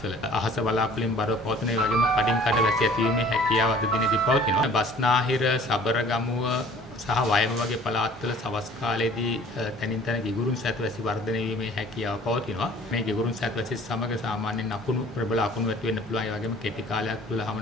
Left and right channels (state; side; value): normal; both; correlation 0.50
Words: අහස වලාකුළින් බරව පවතින. ඒ වගේම කඩින් කඩ වැසි ඇතිවීමේ හැකියාව අද දිනේදී පවතිනවා. බස්නාහිර, සබරගමුව සහ වයඹ වගේ පළාත්වල සවස් කාලයේදී තනින් තන ගිගුරුන් සැතවැසි වර්ධනය වීමේ හැකියාව පවතිනවා. මේ ගිගුරුන් සැතවැසි සමග සාමාන්‍යයෙන් අකුණු ප්‍රබල අකුණු ඇති වෙන්න පුළුවන්. ඒ වගේම කෙටි කාලයක් තුළ